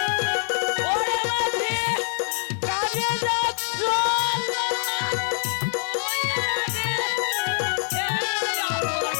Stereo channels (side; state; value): right; silent; 59 dB below the other